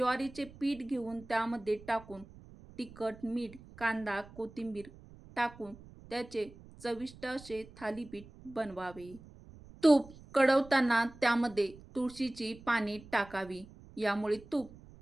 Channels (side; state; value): right; noise; rumble, 20 dB below the sound